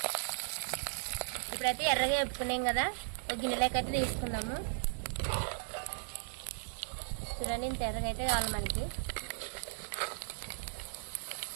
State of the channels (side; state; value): left; silent; digital silence